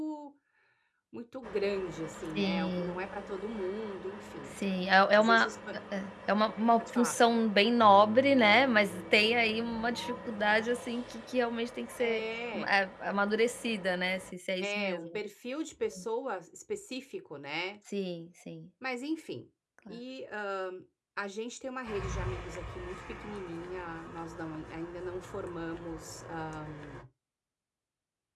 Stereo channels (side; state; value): both; identical; correlation 1.00